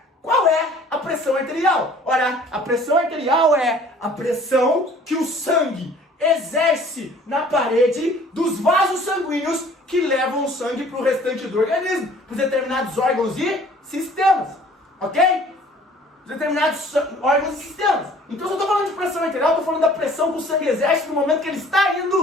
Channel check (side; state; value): both; normal; correlation 0.52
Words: qual é a pressão arterial? Ora, a pressão arterial é a pressão que o sangue exerce na parede dos vasos sanguíneos que levam o sangue para o restante do organismo, para determinados órgãos e sistemas, ok? Determinados órgãos e sistemas. Então, se eu estou falando de pressão arterial, eu estou falando da pressão que o sangue exerce no momento que ele está